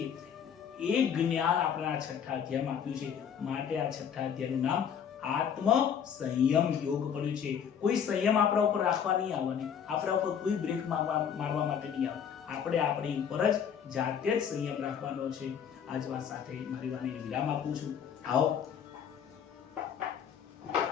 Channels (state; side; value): quieter; right; 7.9 dB